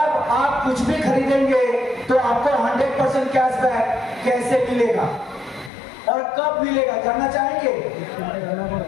आप कुछ भी खरीदेंगे तो आपको 100% कैशबैक कैसे मिलेगा और कब मिलेगा, जानना चाहेंगे?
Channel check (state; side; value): drops out; right; at 5.7 s